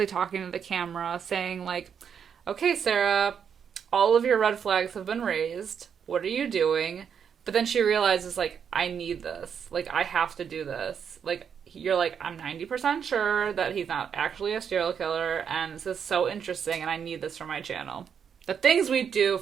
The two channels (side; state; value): left; quieter; 7.5 dB